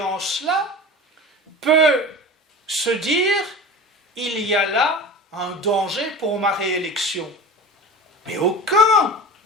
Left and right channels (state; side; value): normal; both; correlation 0.34